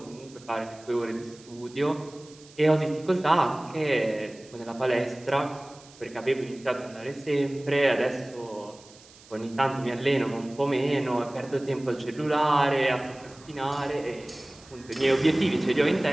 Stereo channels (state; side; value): noise; right; hiss, 23 dB below the sound